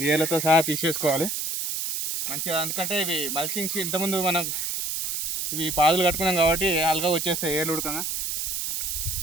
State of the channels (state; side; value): noise; right; hiss, 2 dB below the sound